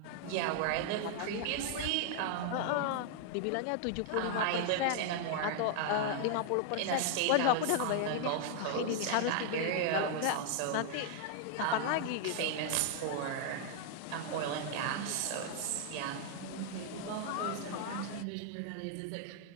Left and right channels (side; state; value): both; different; correlation 0.00